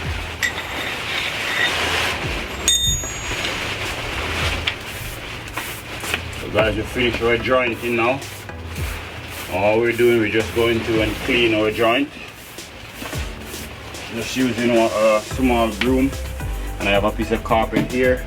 Guys, we finished our jointing now. All we're doing, we're just going to and clean our joint. Just using a small broom, and I have a piece of carpet here.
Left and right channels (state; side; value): identical; both; correlation 1.00